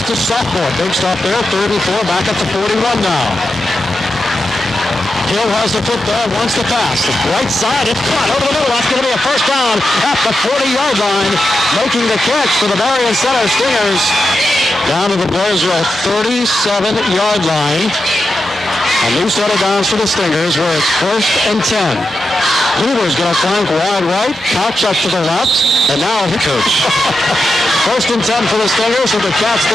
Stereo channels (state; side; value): normal; both; correlation 0.88